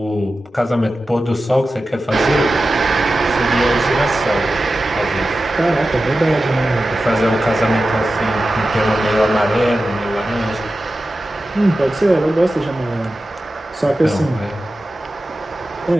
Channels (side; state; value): both; normal; correlation 0.93